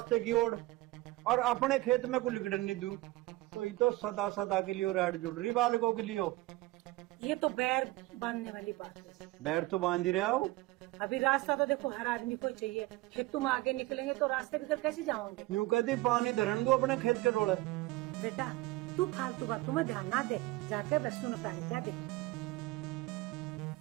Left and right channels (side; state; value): left; quieter; 19.5 dB